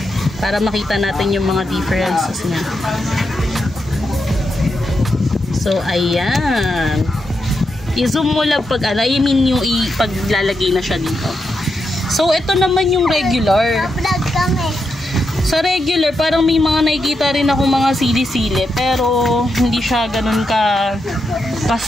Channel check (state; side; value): normal; both; correlation 0.85